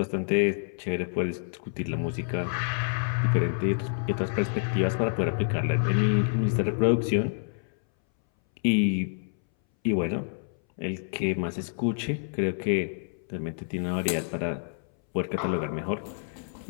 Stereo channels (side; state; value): right; silent; 59 dB below the other